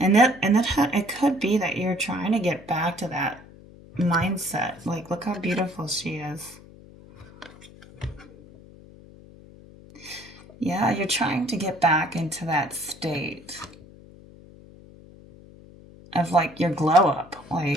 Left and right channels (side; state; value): left; noise; hum, 21 dB below the sound